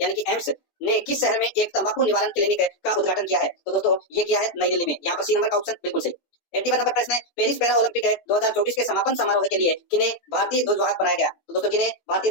यानी कि एम्स ने किस शहर में एक तंबाकू निवारण क्लिनिक का उद्घाटन किया है? तो दोस्तों ये किया है नई दिल्ली में। यहाँ पर सी नंबर का ऑप्शन बिल्कुल सही। 81 नंबर प्रश्न है, पेरिस पैरा ओलंपिक 2024 के समापन समारोह के लिए किन्हें भारतीय ध्वजवाहक बनाया गया? तो दोस्तों किन्हें भारतीय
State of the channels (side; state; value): right; late; 17 ms